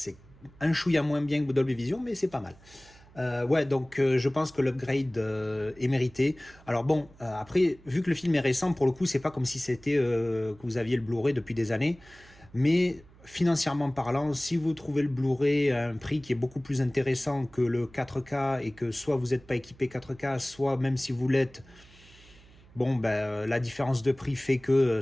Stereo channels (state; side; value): noise; right; hum, 25 dB below the sound